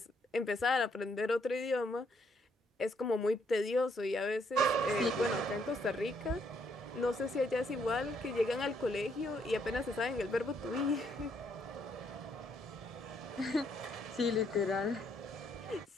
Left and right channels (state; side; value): normal; both; correlation 0.72